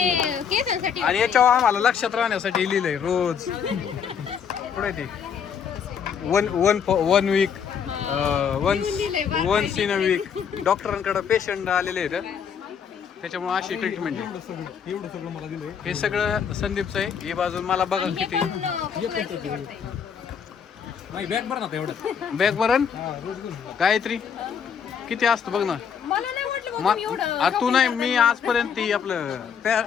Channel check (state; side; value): quieter; right; 7.2 dB